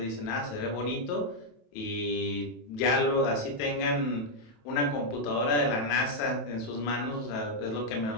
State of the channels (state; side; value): late; right; 27 ms